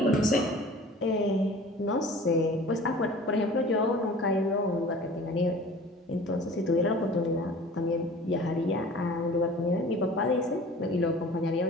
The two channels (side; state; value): both; normal; correlation 0.44